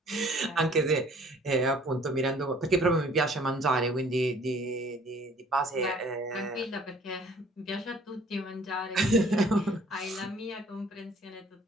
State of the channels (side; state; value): both; normal; correlation 0.55